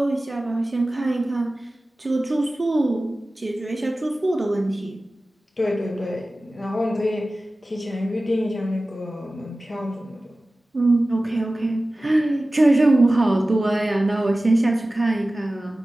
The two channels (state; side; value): normal; both; correlation 0.96